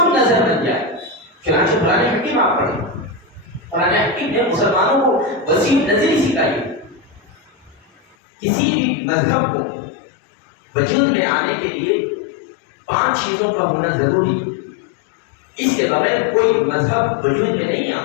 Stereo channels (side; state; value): right; drops out; at 8.2 s